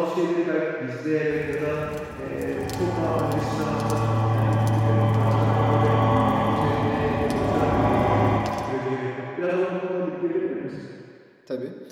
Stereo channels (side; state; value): both; identical; correlation 1.00